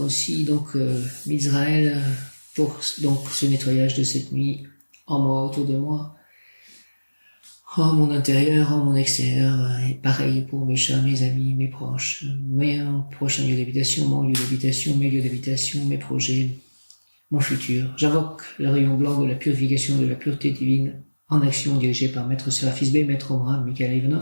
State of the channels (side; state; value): both; inverted; correlation -1.00